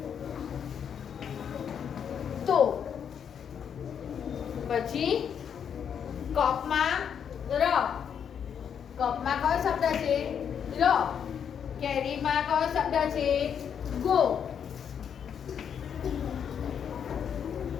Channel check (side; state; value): right; quieter; 7.9 dB